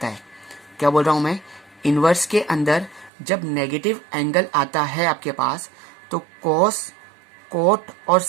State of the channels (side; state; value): left; drops out; at 3.1 s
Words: है क्या बोल रहा हूं मैं, इनवर्स के अंदर जब नेगेटिव एंगल आता है आपके पास तो कोस, कोट और